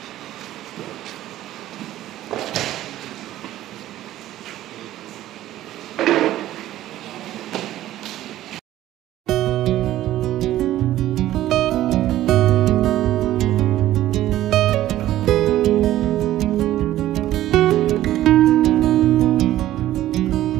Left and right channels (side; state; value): left; quieter; 14.0 dB